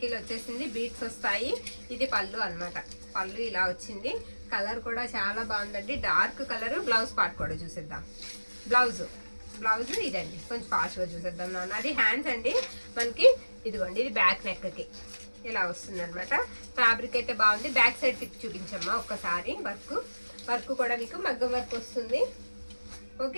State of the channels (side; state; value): both; inverted; correlation -1.00